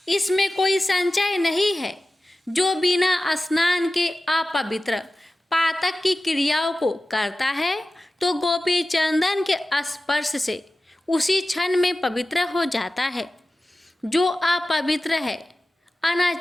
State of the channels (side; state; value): both; normal; correlation 0.95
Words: इसमें कोई संचय नहीं है। जो बिना स्नान के अपवित्र पातक की क्रियाओं को करता है तो गोपी चंदन के स्पर्श से उसी क्षण में पवित्र हो जाता है। जो अपवित्र है,